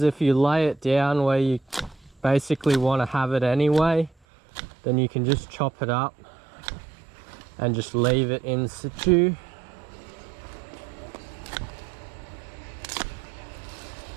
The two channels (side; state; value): left; drops out; at 4.1 s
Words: if you lay it down where you basically want to have it anyway, then you can just chop it up and just leave it in situ.